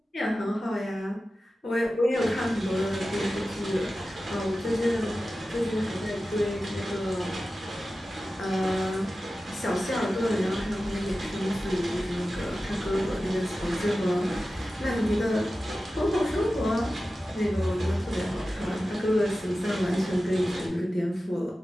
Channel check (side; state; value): both; normal; correlation 0.94